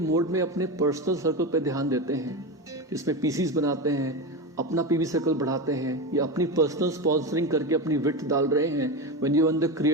मोड में अपने पर्सनल सर्कल पे ध्यान देते हैं, जिसमें पीसीस बनाते हैं, अपना पीवी सर्कल बढ़ाते हैं या अपनी पर्सनल स्पॉन्सरिंग करके अपनी विथ डाल रहे हैं, when you in the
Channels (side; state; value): both; normal; correlation 0.19